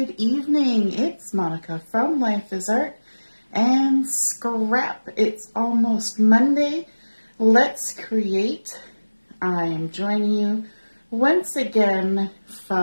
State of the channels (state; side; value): inverted; both; correlation -1.00